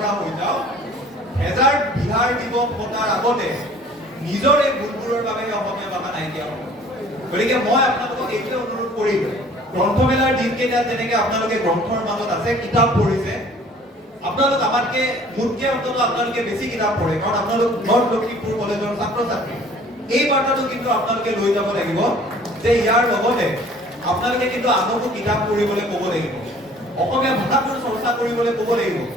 হৈ যাওঁ, হেজাৰ বিহাৰ দিৱস পতাৰ আগতে নিজৰ এই ভুলবোৰৰ বাবে অসমীয়া ভাষা নাইকিয়া হ'ব। গতিকে মই আপোনালোকক এইটোৱে অনুৰোধ কৰিম, গ্ৰন্থমেলাৰ দিনকেইটাত যেনেকে আপোনালোকে গ্ৰন্থৰ মাজত আছে, কিতাপ পঢ়িছে, আপোনালোক আমাতকে মোতকে অন্তত আপোনালোকে বেছি কিতাপ পঢ়ে, কাৰণ আপোনালোক নৰ্থ লখিমপুৰ কলেজৰ ছাত্ৰ-ছাত্ৰী। এই বাৰ্তাটো কিন্তু আপোনালোকে লৈ যাব লাগিব যে ইয়াৰ লগতে আপোনালোকে কিন্তু আনকো কিতাপ পঢ়িবলৈ ক'ব লাগিব, অসমীয়া ভাষাটোৰ চৰ্চা কৰিবলৈ ক'ব লাগিব।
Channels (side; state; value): both; normal; correlation 0.51